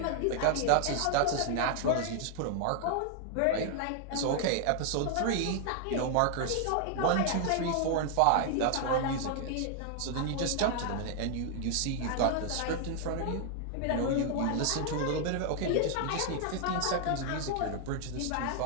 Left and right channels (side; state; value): both; different; correlation 0.00